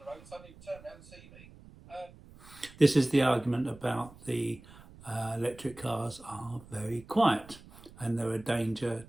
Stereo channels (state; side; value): noise; right; rumble, 21 dB below the sound